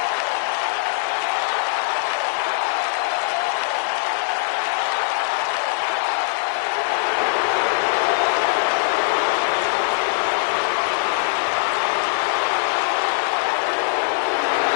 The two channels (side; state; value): right; silent; digital silence